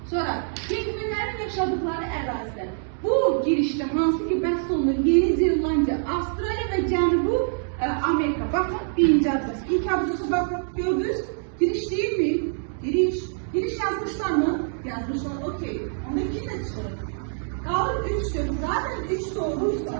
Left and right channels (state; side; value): silent; left; digital silence